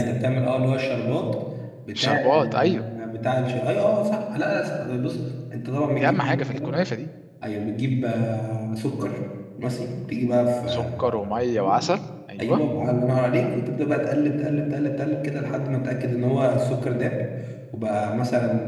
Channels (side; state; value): both; identical; correlation 1.00